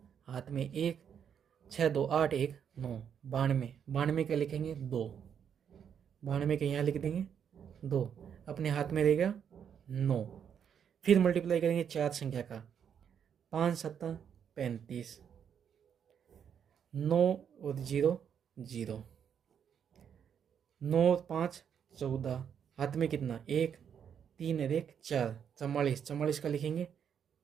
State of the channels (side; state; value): left; quieter; 8.0 dB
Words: हाथ में 1, 6 2 8 1 9, 92, 92 का लिखेंगे 2, 92 के यहाँ लिख देंगे 2, अपने हाथ में रहेगा 9। फिर मल्टीप्लाई करेंगे 4 संख्या का, 5 7 35, 9 और 0 0, 9 5 14, हाथ में कितना 1, 3 और 1 4, 44, 44 का लिखेंगे